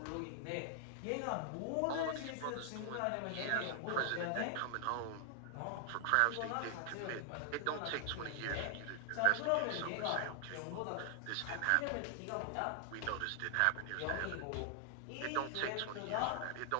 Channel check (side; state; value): both; different; correlation 0.00